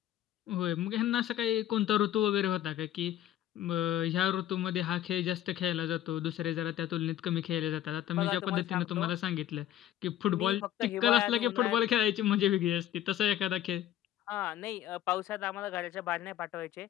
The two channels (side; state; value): right; quieter; 12.1 dB